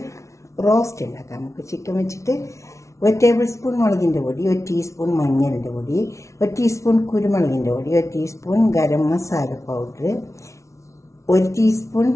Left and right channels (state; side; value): late; right; 0.14 ms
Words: റോസ്റ്റ് ഉണ്ടാക്കാം. നമുക്ക് ചിക്കൻ വെച്ചിട്ട് 1 ടേബിൾ സ്പൂൺ മുളകിൻ്റെ പൊടി, 1 ടീസ്പൂൺ മഞ്ഞളിൻ്റെ പൊടി, 1 ടീസ്പൂൺ കുരുമുളകിൻ്റെ പൊടി, 1 teaspoon garam masala powder, 1 teaspoon